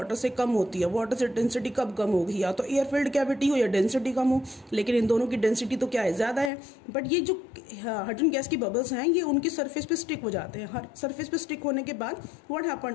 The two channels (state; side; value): drops out; right; at 6.5 s